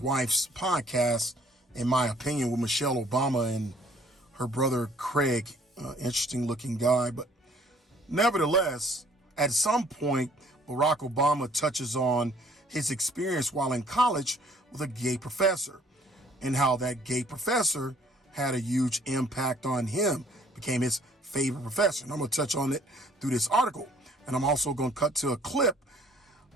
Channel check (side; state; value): both; normal; correlation 0.59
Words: podcast. In my opinion, with Michelle Obama and her brother Craig, interesting looking guy. But nevertheless, at some point, Barack Obama touches on his experience while in college with a gay professor, and how that gay professor had a huge impact on him, became his favorite professor. And I'm going to touch on it through this article. And I'm also going to cut to a clip.